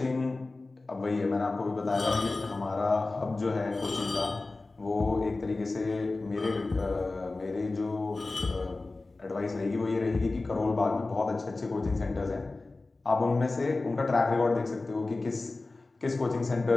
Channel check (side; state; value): right; quieter; 3.3 dB